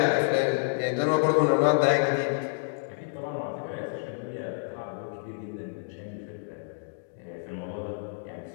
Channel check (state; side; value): silent; right; digital silence